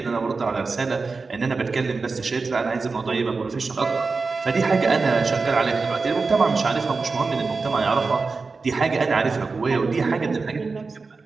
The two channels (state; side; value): quieter; left; 4.2 dB